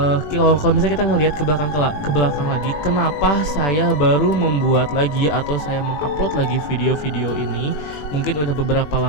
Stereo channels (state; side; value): late; right; 21 ms